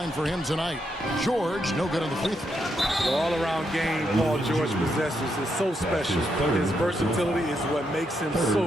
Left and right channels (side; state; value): both; normal; correlation 0.80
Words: for him tonight. George, no good on the free throw. The all-around game Paul George possesses is so special. His versatility is what makes him so